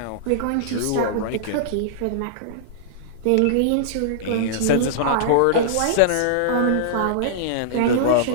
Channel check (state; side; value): different; both; correlation -0.02